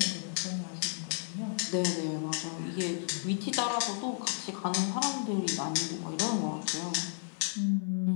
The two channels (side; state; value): right; silent; 56 dB below the other